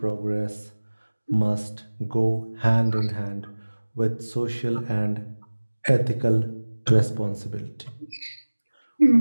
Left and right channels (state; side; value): inverted; both; correlation -1.00